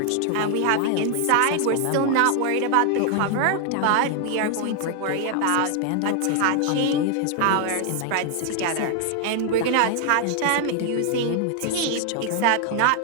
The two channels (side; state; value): both; different; correlation 0.00